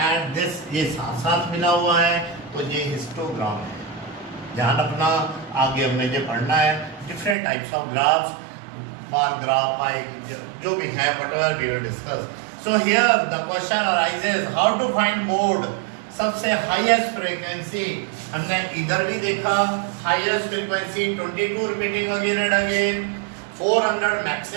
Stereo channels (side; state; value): left; drops out; at 7.4 s